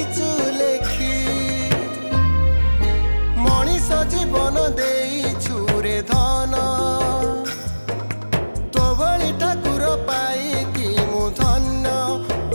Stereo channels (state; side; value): inverted; both; correlation -1.00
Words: लेखी मनीष जीवन दे छुरे धन तो भली ठाकुर पाई कि मु धन्य